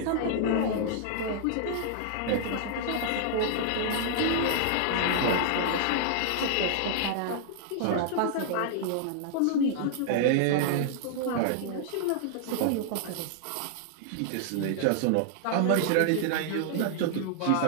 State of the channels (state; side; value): different; both; correlation -0.01